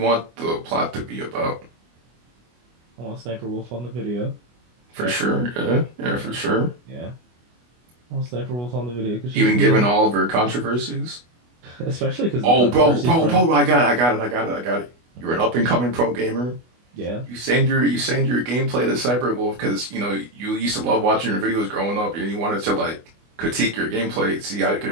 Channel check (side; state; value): left; late; 24 ms